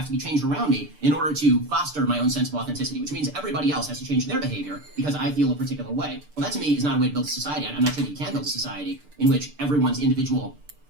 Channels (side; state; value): left; late; 6.8 ms